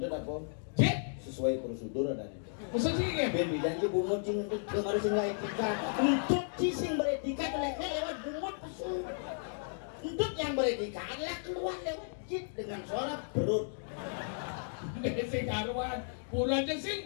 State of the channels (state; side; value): silent; right; digital silence